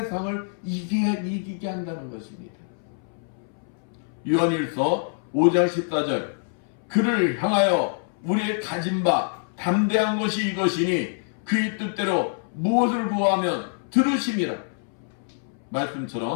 이기게 한다는 것입니다. 요한일서 5장 14절 그를 향하여 우리의 가진 바 담대한 것이 이것이니 그의 뜻대로 무엇을 구하면 들으심이라.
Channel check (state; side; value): silent; right; 61 dB below the other